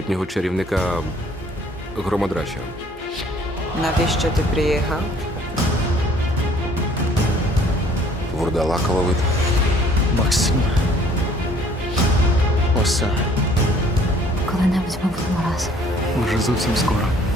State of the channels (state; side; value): normal; both; correlation 0.58